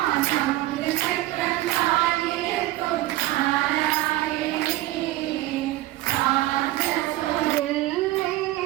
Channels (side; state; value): left; quieter; 16.5 dB